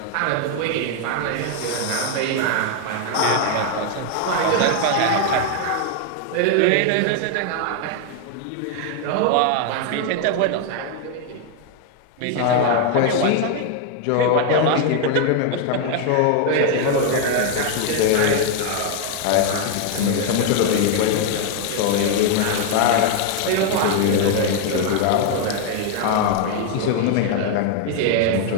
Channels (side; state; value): both; different; correlation 0.00